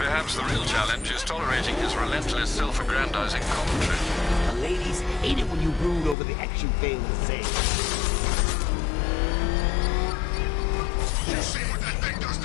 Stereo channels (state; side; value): drops out; right; at 6.2 s